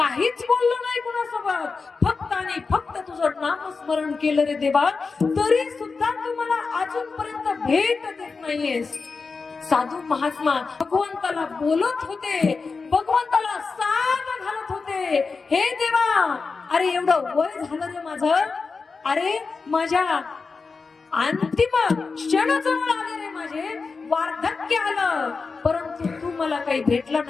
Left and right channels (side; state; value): right; quieter; 4.5 dB